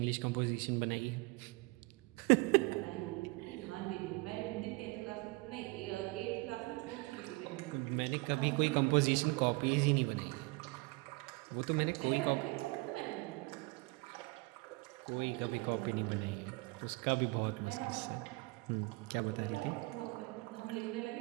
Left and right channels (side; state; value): left; quieter; 26.0 dB